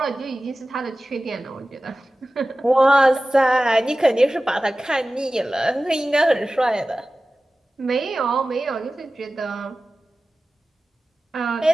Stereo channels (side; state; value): both; normal; correlation 0.96